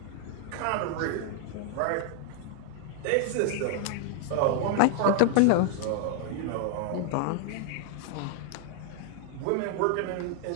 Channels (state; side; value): different; both; correlation -0.01